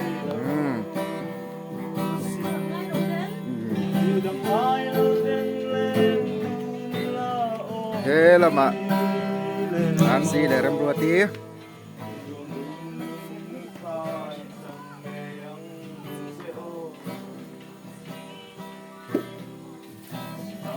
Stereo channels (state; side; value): identical; both; correlation 1.00